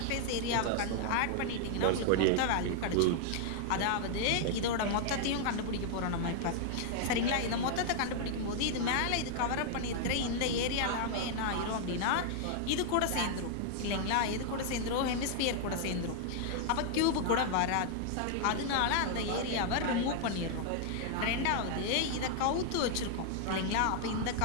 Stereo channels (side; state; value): both; different; correlation -0.01